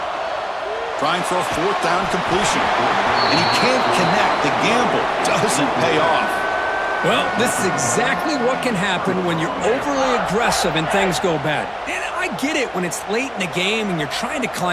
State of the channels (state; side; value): identical; both; correlation 1.00